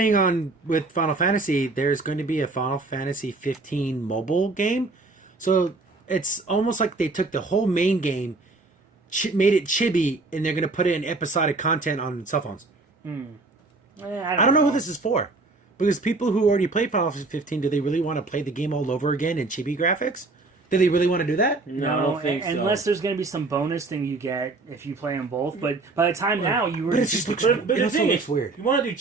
on with Final Fantasy, there's going to be a Final Fantasy 15 mobile game. So it's almost like they took the whole main game, made it chibi, and they're going to put it in episodic content on cell phones. I don't know who this is for. Because people who already played Final Fantasy 15, do they really want to play the game all over again in chibi graphics? Do they really want to do that? No, I don't think so. Unless there's going to be some bonus thing you get if you play them both. But by the time now, you were But it just looks But It the also thing looks is, weird. you want to do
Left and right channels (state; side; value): quieter; left; 3.4 dB